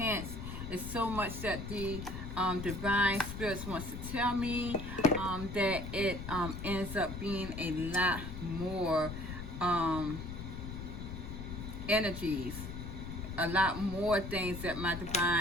It's so much that the divine spirits wants to tell me that it ends up being a lot more energies, a lot more things that my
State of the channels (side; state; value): left; noise; rumble, 7 dB below the sound